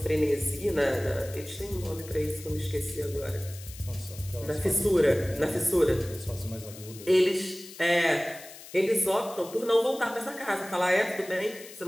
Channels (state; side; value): noise; left; hiss, 16 dB below the sound